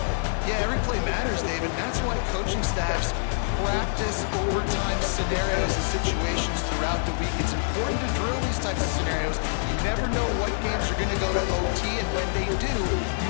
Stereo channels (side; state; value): right; silent; digital silence